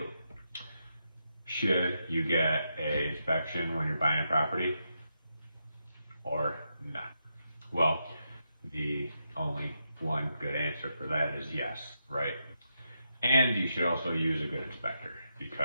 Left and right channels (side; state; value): both; inverted; correlation -0.84